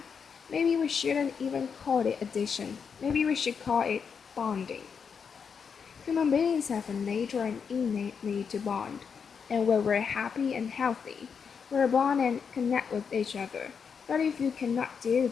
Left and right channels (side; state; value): right; quieter; 6.3 dB